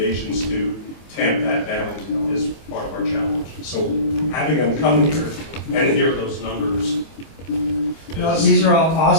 to tamp that down is part of our challenge. So having them come here and hear those numbers. No, these are all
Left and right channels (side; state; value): right; late; 25 ms